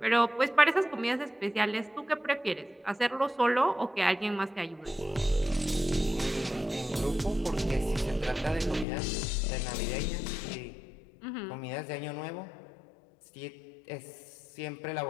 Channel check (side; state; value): right; drops out; at 8.8 s